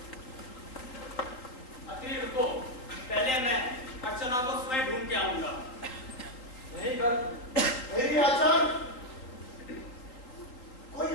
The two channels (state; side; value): late; right; 3.9 ms